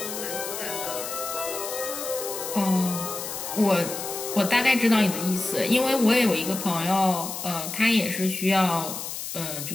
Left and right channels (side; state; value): left; noise; hiss, 7 dB below the sound